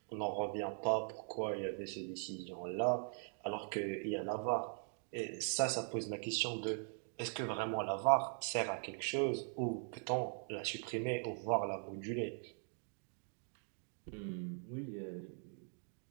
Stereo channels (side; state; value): left; silent; 50 dB below the other